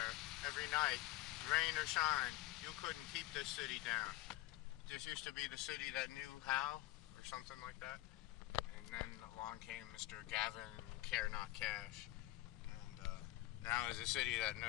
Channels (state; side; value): quieter; right; 16.8 dB